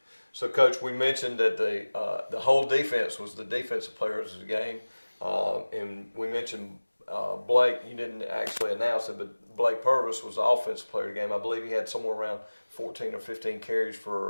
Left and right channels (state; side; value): inverted; both; correlation -1.00